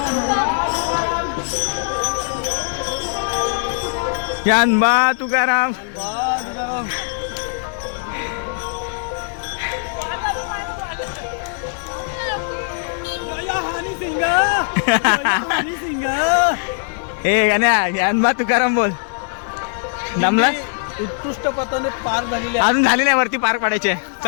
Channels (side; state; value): right; silent; digital silence